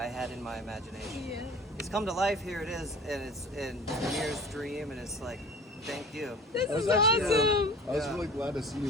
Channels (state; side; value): normal; both; correlation 0.42